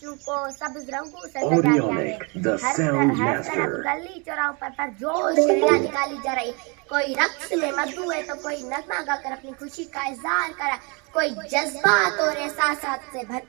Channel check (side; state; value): left; quieter; 31.6 dB